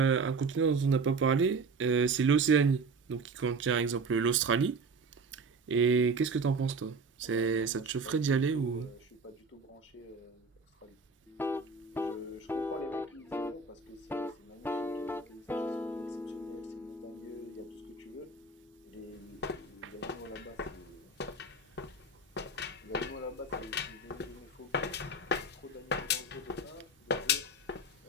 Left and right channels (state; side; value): quieter; left; 3.5 dB